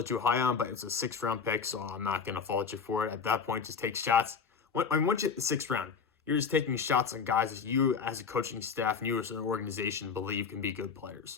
too high on, but it's a 6th round pick, so I'm not going to fault you for it. At that point, just take shots. Once you hit the 6th round, you're just taking shots on guys that you, as a coaching staff, and you as an organization, believe can be good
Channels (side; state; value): right; quieter; 5.8 dB